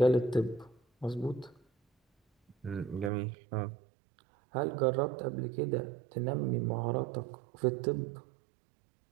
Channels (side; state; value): left; drops out; at 3.1 s